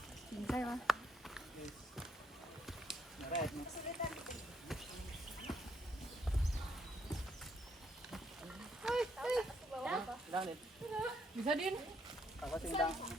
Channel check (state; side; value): normal; both; correlation 0.72